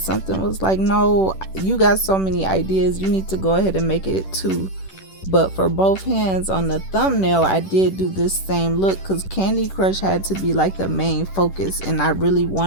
was like, no, you got so many ideas, you need to go ahead and make it two. But for both hands on the thumbnail, I did do this same look because Candy Crush had to be like the main focus, and I really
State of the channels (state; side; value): late; right; 10 ms